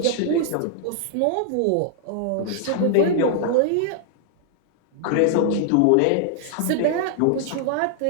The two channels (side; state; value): both; different; correlation 0.00